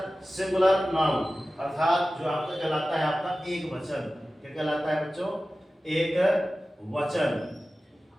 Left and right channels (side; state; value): both; normal; correlation 0.95